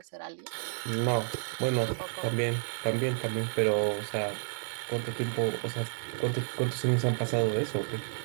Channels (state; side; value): silent; left; digital silence